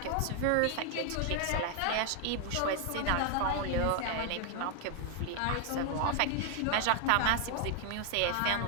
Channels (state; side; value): different; both; correlation 0.00